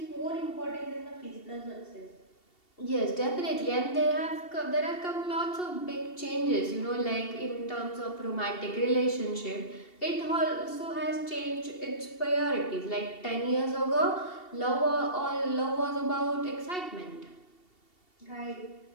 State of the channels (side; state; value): right; late; 2.7 ms